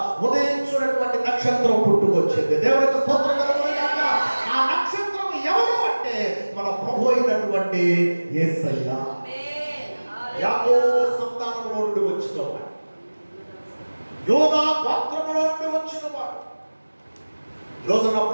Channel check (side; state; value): both; inverted; correlation -1.00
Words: ఉదయించున్నటువంటి నక్షత్రం పుట్టుకొచ్చింది. దేవునికి స్తోత్రం కలుగును గాక. ఆ నక్షత్రం ఎవరు అంటే మన ప్రభు అయినటువంటి యేసయ్య. యాకోబు సంతానములో నుండి వచ్చినవాడు, యోదా గోత్రములో నుండి వచ్చినవాడు. ఈరోజు నా